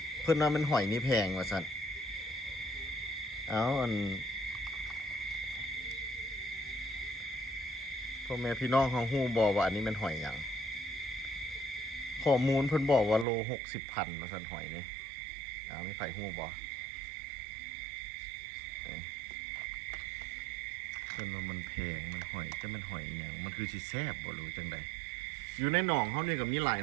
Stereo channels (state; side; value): drops out; left; at 13.2 s